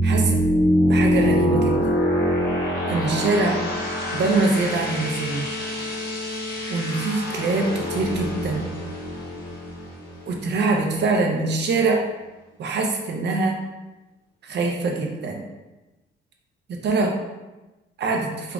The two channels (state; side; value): normal; both; correlation 0.56